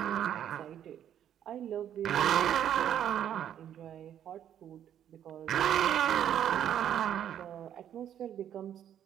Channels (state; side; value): quieter; left; 10.1 dB